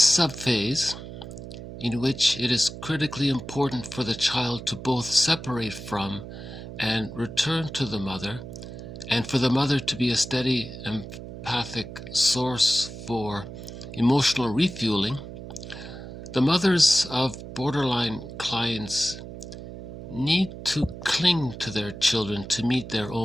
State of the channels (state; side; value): noise; right; hum, 11 dB below the sound